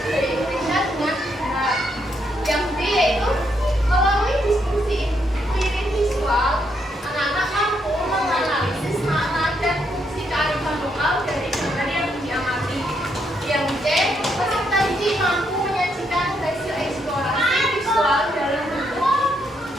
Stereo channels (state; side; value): normal; both; correlation 0.77